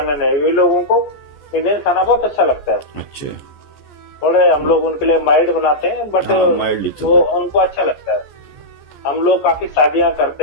है। वे लोगों को इंडियन खाना बहुत अच्छा लगता है। अच्छा। थोड़े हम लोग उनके लिए माइल्ड बनाते हैं, बट माइल्ड वो उनको अच्छा लगता है। हम लोग काफी शादियां करते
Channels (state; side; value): late; right; 14 ms